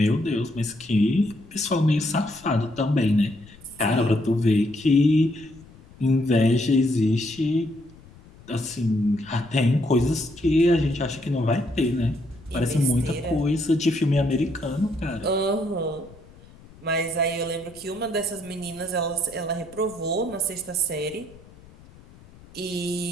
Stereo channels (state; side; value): noise; left; rumble, 23 dB below the sound